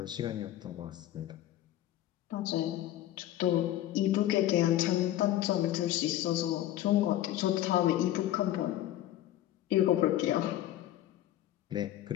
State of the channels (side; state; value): right; quieter; 13.4 dB